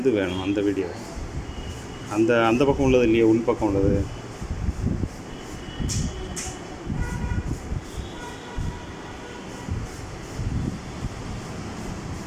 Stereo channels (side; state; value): both; identical; correlation 1.00